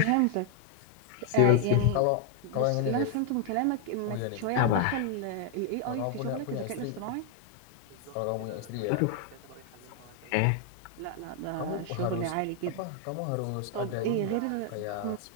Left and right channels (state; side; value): different; both; correlation 0.00